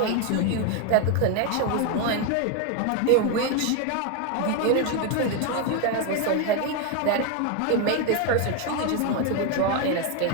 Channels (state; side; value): different; both; correlation 0.01